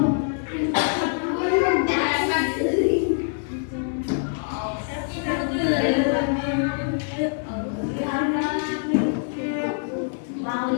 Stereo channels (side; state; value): right; silent; 62 dB below the other